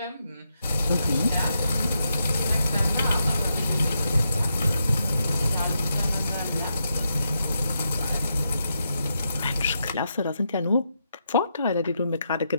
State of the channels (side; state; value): both; inverted; correlation -0.83